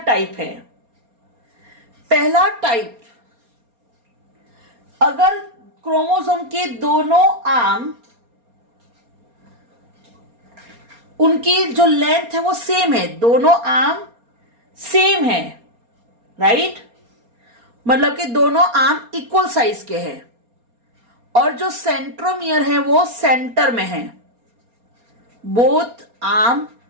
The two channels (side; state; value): left; late; 4.3 ms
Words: टाइप हैं। पहला टाइप, अगर क्रोमोसोम के दोनों आर्म उनकी जो लेंथ है वो सेम है, दोनों आर्म सेम है, राइट, मतलब कि दोनों आर्म इक्वल साइज के हैं और जो सेंट्रोमियर है वो सेंटर में है, बोथ आर्म